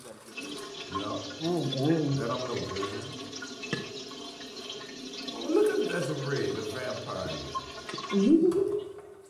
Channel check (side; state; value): both; identical; correlation 1.00